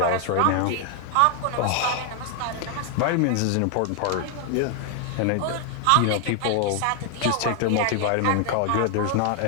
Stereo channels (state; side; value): different; both; correlation 0.00